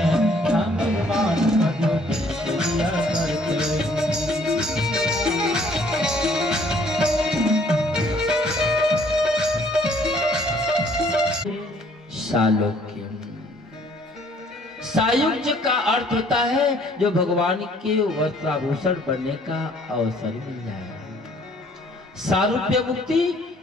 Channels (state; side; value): normal; both; correlation 0.60